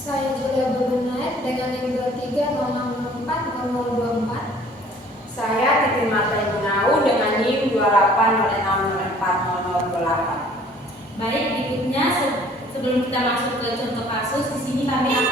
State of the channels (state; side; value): normal; both; correlation 0.54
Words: Julia Bebenait dengan NIM 2306040024. Saya Titi Marta Gunau dengan NIM 2806040028. Baik, berikutnya sebelum kita masuk ke contoh kasus, di sini kami